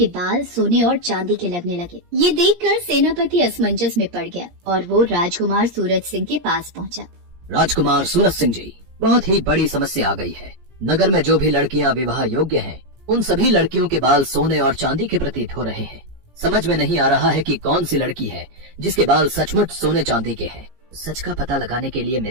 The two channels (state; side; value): late; left; 17 ms